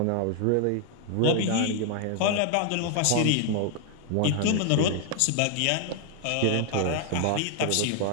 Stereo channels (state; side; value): different; both; correlation 0.00